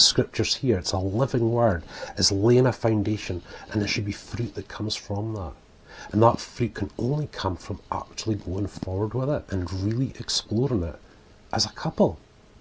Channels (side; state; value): both; identical; correlation 1.00